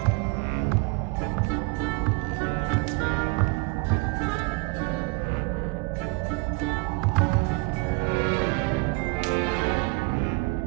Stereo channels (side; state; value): left; quieter; 28.1 dB